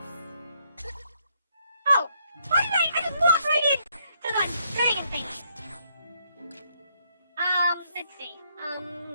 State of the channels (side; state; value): both; inverted; correlation -0.73